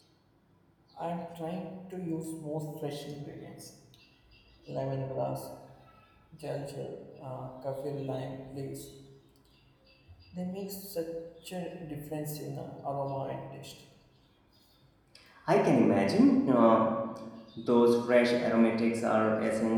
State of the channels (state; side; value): identical; both; correlation 1.00